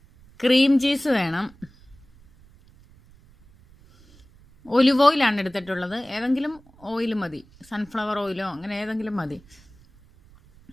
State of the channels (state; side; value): noise; right; rumble, 27 dB below the sound